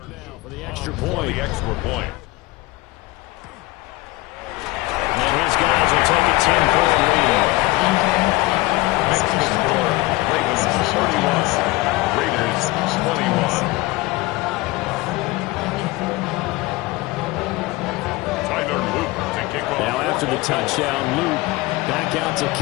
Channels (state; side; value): quieter; right; 20.9 dB